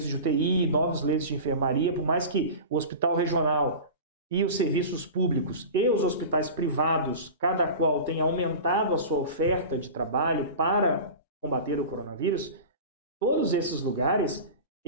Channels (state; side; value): inverted; both; correlation -0.32